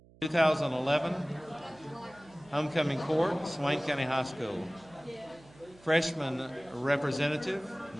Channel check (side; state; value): right; noise; hum, 25 dB below the sound